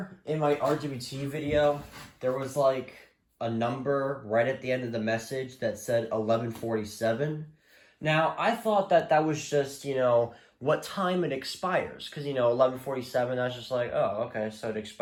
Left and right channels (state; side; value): identical; both; correlation 1.00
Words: in my RGBT video, there was like a number right at the end of the message that said 11:47. Now, I thought that that was just, what time it expires. Because, 11:47, I was just like, oh, okay, so it